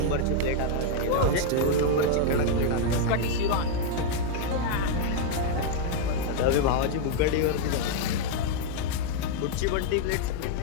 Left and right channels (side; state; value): both; different; correlation 0.00